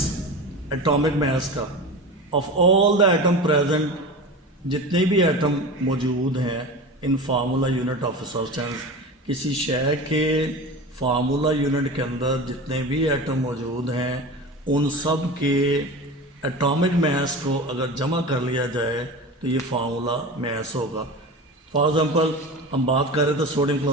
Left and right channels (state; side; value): normal; both; correlation 0.31